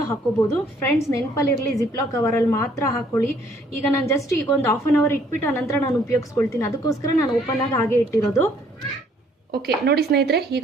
ಹಾಕೋಬೋದು. ಫ್ರೆಂಡ್ಸ್, ನೆನಪಲ್ಲಿರಲಿ, ಜಿಪ್ಲಾಕ್ ಕವರಲ್ಲಿ ಮಾತ್ರ ಹಾಕೊಳ್ಳಿ. ಈಗ ನಾನು ಜಸ್ಟ್ ಈಗ ಒಂದು 1/2 ಅವರ್ ಇಟ್ಬಿಟ್ಟು ಆನಂತರ ನಾನು ಉಪಯೋಗಿಸ್ಕೊಳ್ತೀನಿ. ಅದಕ್ಕೋಸ್ಕರ ನಾನು ಓಪನ್ ಆಗಿ ಹಾಗೆ ಇಟ್ಟಿರೋದು. ಓಕೆ ನೋಡಿ ಸ್ನೇಹಿತರೆ,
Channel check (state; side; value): normal; both; correlation 0.63